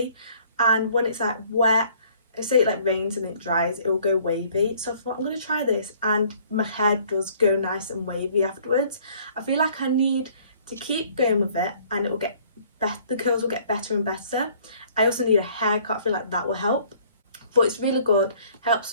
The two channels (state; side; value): inverted; both; correlation -0.58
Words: and when it's like wet, say it like rains and it dries, it will go wavy. So I thought, I'm going to try this, and my hair does go nice and wavy afterwards. I feel like I need to keep going with it, and it will get better, the curls will get better and better. I also need a haircut. I feel like that will help. But it's really good, helps